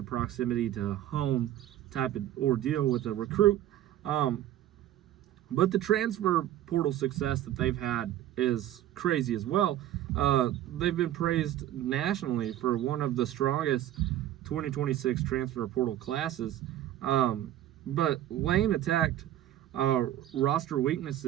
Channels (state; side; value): quieter; left; 12.7 dB